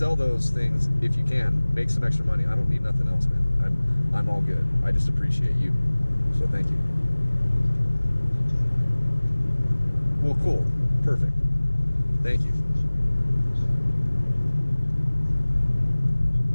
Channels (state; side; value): inverted; both; correlation -1.00